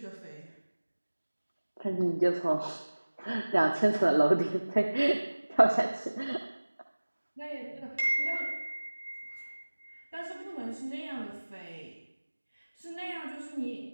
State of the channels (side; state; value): both; inverted; correlation -1.00